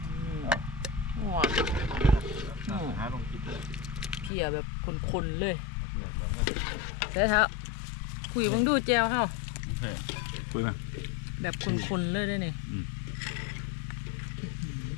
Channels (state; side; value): drops out; right; at 4.3 s